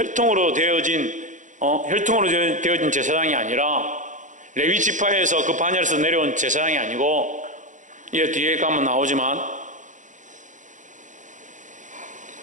되어진 제사장이 아니라 레위 지파에서 그 반열에서 내려온 제사장이 아니고, 이 뒤에 가면 나오지만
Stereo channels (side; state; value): left; late; 0.36 ms